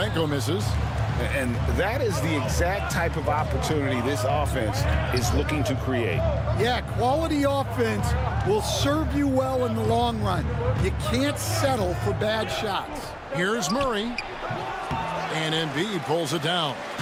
misses. And that is the exact type of opportunity this offense is looking to create. Yeah, quality offense will serve you well in the long run. You can't settle for bad shots. Here's Murray. And Embiid pulls it down.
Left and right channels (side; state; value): both; identical; correlation 1.00